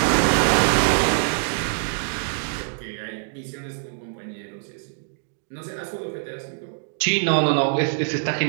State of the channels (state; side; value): silent; left; digital silence